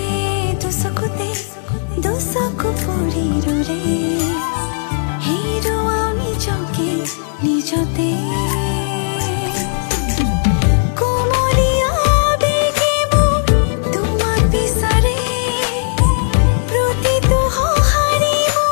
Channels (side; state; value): right; silent; digital silence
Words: দুচকুতে দুচকু পৰি ৰলে হেৰুৱাও নিজকে নিজতে